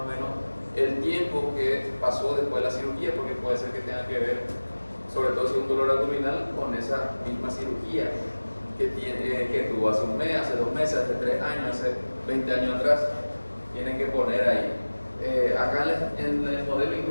o menos el tiempo que pasó después de la cirugía, porque puede ser que tenga que ver, sobre todo si es un dolor abdominal, con esa misma cirugía que tuvo hace un mes, hace 2 meses, hace 3 años, hace 20 años atrás. Tienen que poner ahí. Acá en el modelo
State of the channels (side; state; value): both; inverted; correlation -1.00